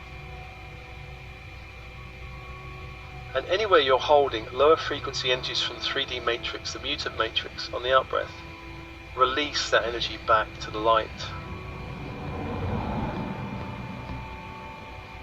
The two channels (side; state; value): both; identical; correlation 1.00